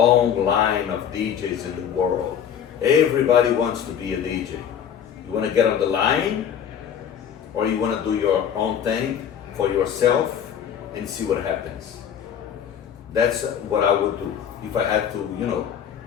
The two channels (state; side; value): quieter; right; 8.7 dB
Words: line of DJs in the world. Everybody wants to be a DJ. You want to get on the line, or you want to do your own thing for yourself and see what happens. That's what I would do. If I had to,